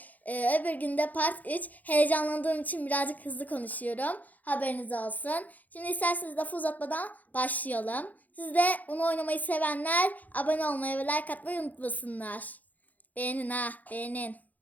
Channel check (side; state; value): right; late; 0.081 ms